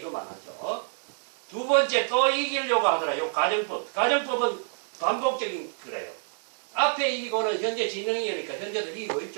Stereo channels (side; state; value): left; silent; digital silence